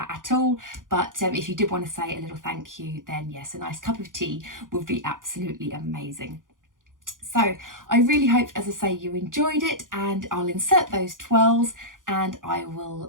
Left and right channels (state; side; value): late; left; 0.89 ms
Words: at all, but if you did want to say a little thank you, then yes, a nice cup of tea would be absolutely amazing. So I really hope, as I say, you enjoyed it, and I'll insert those twirls and I will